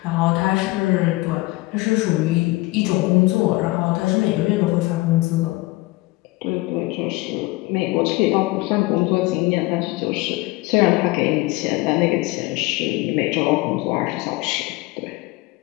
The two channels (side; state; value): right; quieter; 21.2 dB